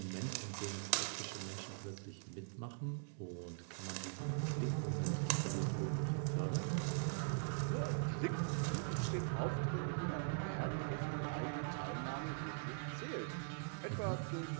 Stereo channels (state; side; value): silent; left; digital silence